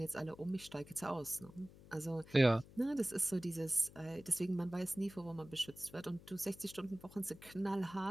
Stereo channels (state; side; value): noise; left; hum, 20 dB below the sound